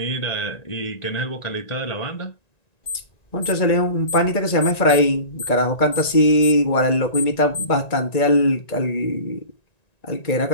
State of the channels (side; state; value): right; late; 1.9 ms